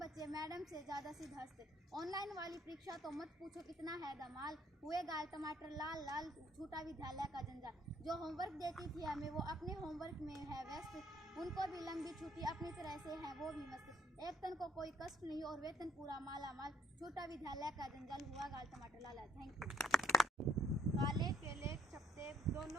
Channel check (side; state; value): both; normal; correlation 0.66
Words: मैडम से ज़्यादा सिद्धस्त ऑनलाइन वाली परीक्षा तो मत पूछो कितना है धमाल हुए गाल टमाटर लाल लाल छोटा विद्यालय का जंजाल जो होमवर्क देती थी हमें वो अपने होमवर्क में है व्यस्त उनको भी लंबी छुट्टी अपनी तरह से है वो भी मस्त एक तन को कोई कष्ट नहीं और वेतन पूरा माला माल छोटा विद्यालय का जंजाल हुआ गाल टमाटर लाल लाल। Thank you. काले केले चपटे